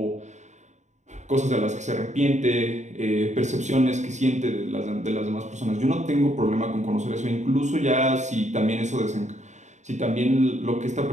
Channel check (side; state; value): left; late; 0.34 ms